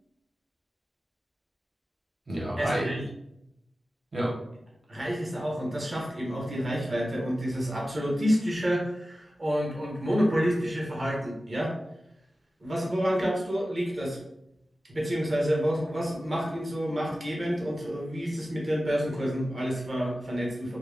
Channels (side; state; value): both; normal; correlation 0.94